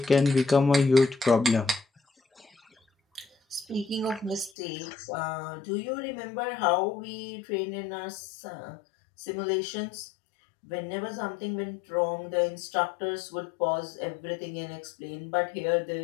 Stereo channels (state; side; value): drops out; right; at 4.5 s